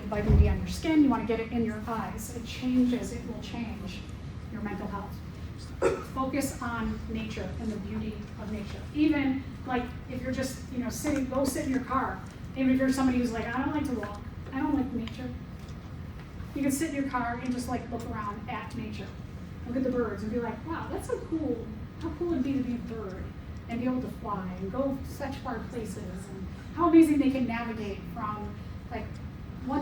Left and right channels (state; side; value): identical; both; correlation 1.00